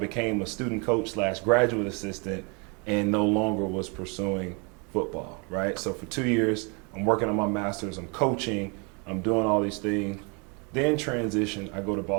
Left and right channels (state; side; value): quieter; left; 32.7 dB